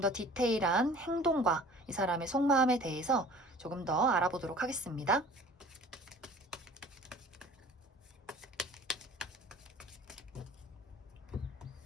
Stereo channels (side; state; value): both; normal; correlation 0.46